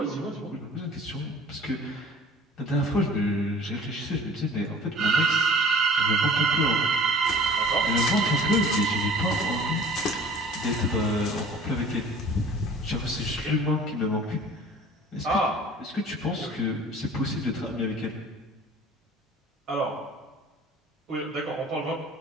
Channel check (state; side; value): normal; both; correlation 0.46